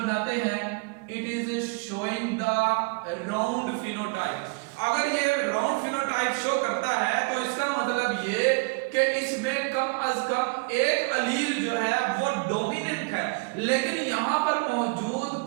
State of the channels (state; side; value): quieter; left; 29.3 dB